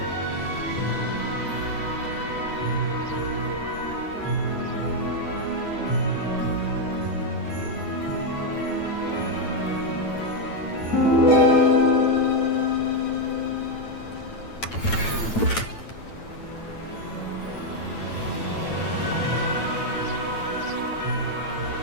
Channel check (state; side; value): late; right; 9.0 ms